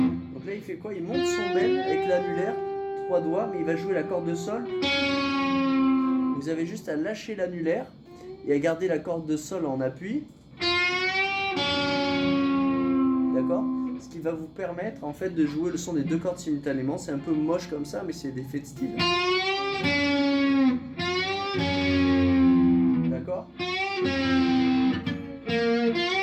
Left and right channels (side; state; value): both; identical; correlation 1.00